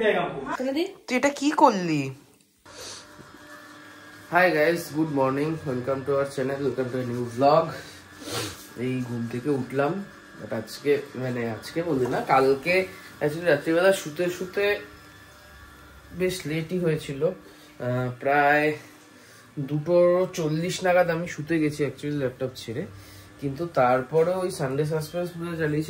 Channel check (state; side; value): identical; both; correlation 1.00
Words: देगा हमको। তুই এটা কি করলি? Hi guys, good morning, welcome to our channel, welcome to a new blog. এই ঘুম থেকে উঠলাম, বাট আজকে বলি না, কালকে অ্যাকচুয়ালি রাত্রিবেলা শুতে শুতে বেশ লেটই হয়েছিল। প্রায় 2:40 নাগাদ আমি শুতে গেছি অ্যাকচুয়ালি ল্যাপটপ ছেড়ে। কিন্তু তারপরে ওই সানডে সাসপেন্স পুরো